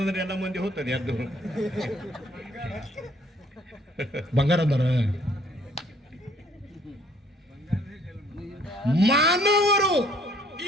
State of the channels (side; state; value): both; normal; correlation 0.62